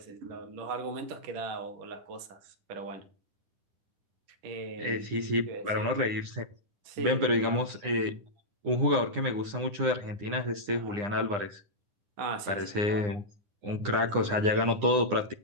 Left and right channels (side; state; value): left; late; 9.8 ms